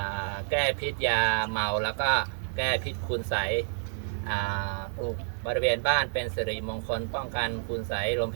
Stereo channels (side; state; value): left; silent; digital silence